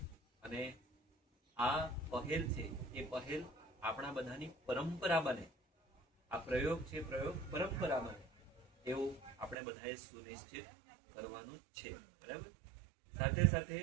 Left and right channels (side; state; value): left; drops out; at 9.6 s